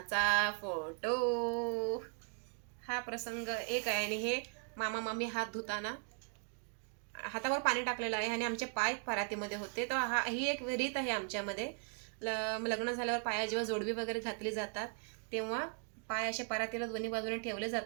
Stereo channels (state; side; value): quieter; left; 39.3 dB